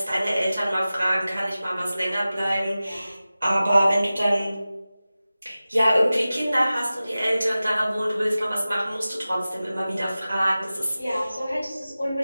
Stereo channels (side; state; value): both; inverted; correlation -0.96